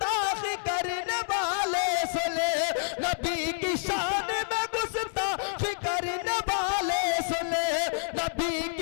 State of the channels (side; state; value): right; silent; 59 dB below the other